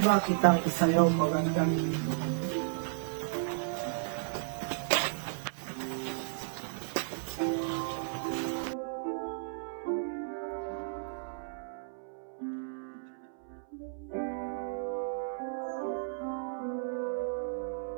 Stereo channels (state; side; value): silent; left; 55 dB below the other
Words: kitang isayaw magandang